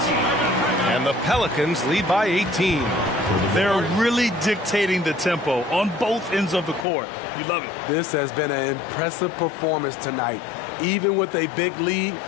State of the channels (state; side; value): drops out; right; at 6.9 s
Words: And the Pelicans lead by 18. They're really dictating the tempo on both ends of the court. You love it. This has been an impressive performance tonight. Even with a big lead,